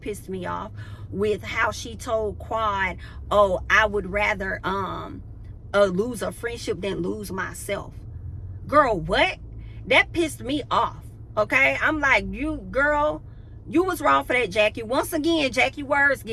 me off with how she told Quad, oh, I would rather lose a friendship than lose myself. Girl, what? That pissed me off. Okay, I'm like, you girl, you was wrong for that, Jackie. Once again, Jackie words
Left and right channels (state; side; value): identical; both; correlation 1.00